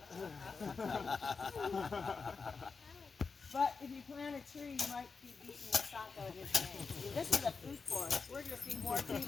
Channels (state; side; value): quieter; right; 4.9 dB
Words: But if you plant a tree, you might be beating Monsanto in his name. This is a food forest. We're going to see more